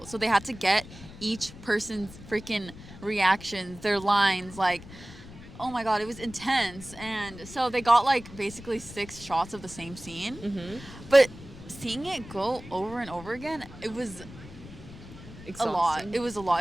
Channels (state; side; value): noise; left; rumble, 16 dB below the sound